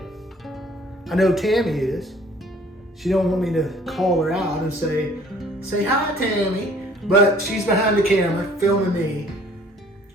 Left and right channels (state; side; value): normal; both; correlation 0.55